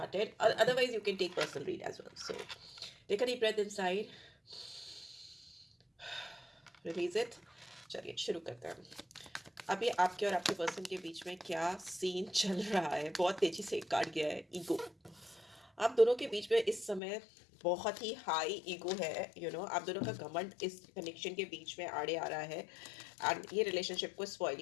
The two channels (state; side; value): drops out; right; at 17.0 s